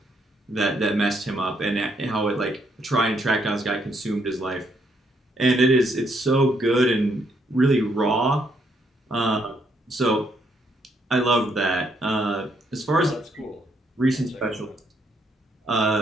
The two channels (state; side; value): normal; both; correlation 0.73